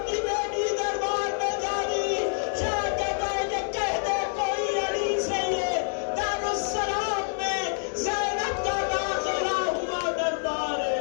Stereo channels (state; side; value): silent; right; digital silence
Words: کی بیٹی دربار میں جا رہی، شاید کہتا ہے کہ کہہ دے کوئی علی سے یہ دارالسلام میں زینب کا داخلہ ہوا دربار ہے۔